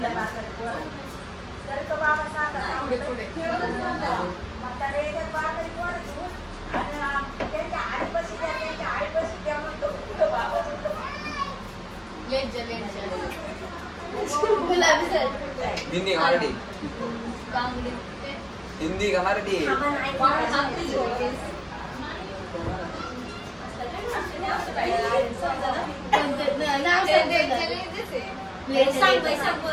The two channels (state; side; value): identical; both; correlation 1.00